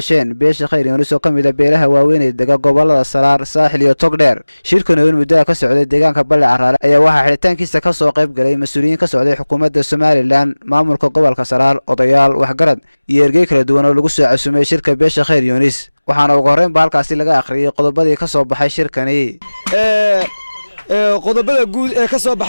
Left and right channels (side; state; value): both; inverted; correlation -1.00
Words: beesha Khayr Yoonis oo kamid ah beelaha waaweyn ee dega gobolada Saraar, Saaxil iyo Togdheer. Shirkan oo muddo ka socday deegaanka Balle Caraale ayaa waxaa xiritaankiisa ka soo qayb galay mas'uuliyiin ka socday xukuumadda Somaliland, maamulka gobolka Saraar, odayaal, waxgarad iyo ergey kala duwan oo lagu soo casuumay shirka beesha Khayr Yoonis. waxaana ugu horreyn halkaasi laga akhriyay qodobadii ka soo baxay shirkani. qodobada guud ee ka soo